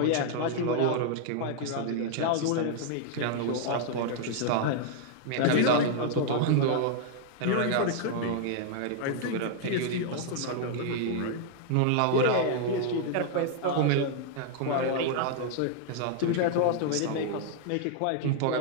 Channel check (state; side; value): different; both; correlation 0.00